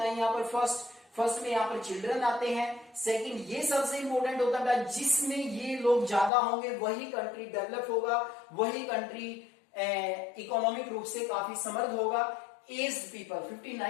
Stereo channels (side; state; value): right; drops out; at 6.3 s